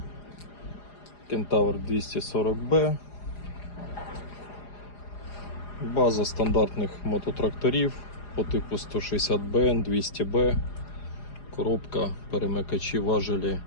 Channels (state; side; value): late; right; 4.9 ms